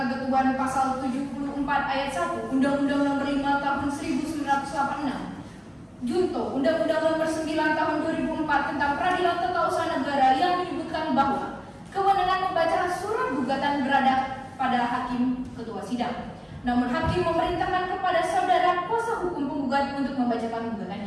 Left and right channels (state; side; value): identical; both; correlation 1.00